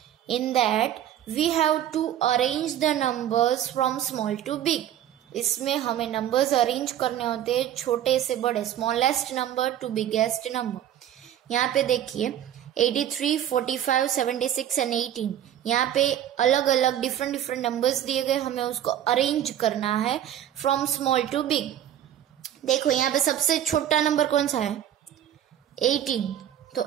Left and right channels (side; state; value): left; quieter; 11.1 dB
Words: In that we have to arrange the numbers from small to big. इसमें हमें numbers arrange करने होते हैं छोटे से बड़े, smallest number two biggest number. यहाँ पे देखिए 83, 45, 76 एंड 18. यहाँ पे अलग अलग डिफरेंट नंबर्स दिए गए, हमें उसको अरेंज करना है फ्रॉम स्मॉल टू बिग. देखो यहाँ पे सबसे छोटा नंबर कौन सा है? 18. तो